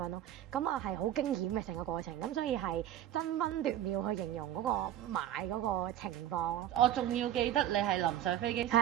咯。咁啊係好驚險嘅成個過程，咁所以係爭分奪秒去形容嗰個買嗰個情況咯。我仲要記得你係臨上飛機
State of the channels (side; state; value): left; quieter; 11.8 dB